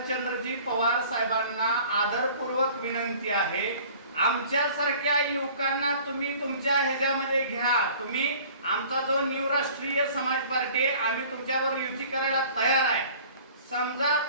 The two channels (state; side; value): inverted; both; correlation -0.49